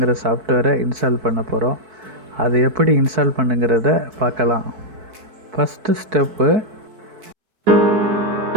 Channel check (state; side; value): late; left; 4.6 ms